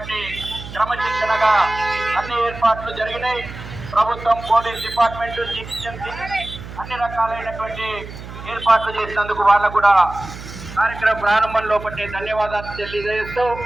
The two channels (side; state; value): right; noise; hum, 13 dB below the sound